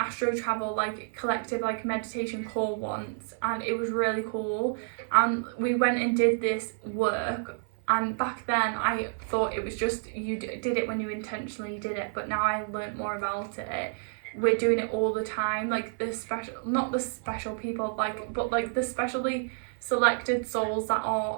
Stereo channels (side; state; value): left; silent; 55 dB below the other